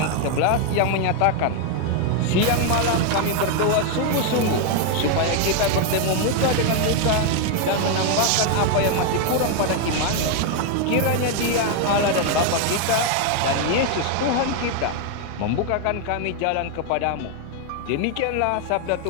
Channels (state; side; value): different; both; correlation 0.01